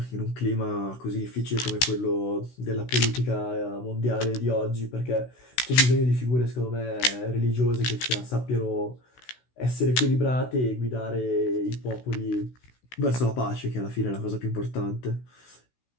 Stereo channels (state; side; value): late; right; 16 ms